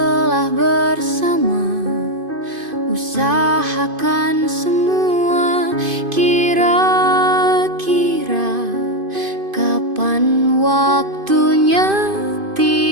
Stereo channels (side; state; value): left; late; 2.5 ms